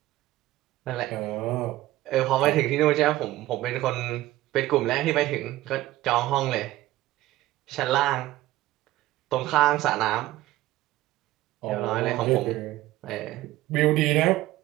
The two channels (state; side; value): quieter; left; 16.2 dB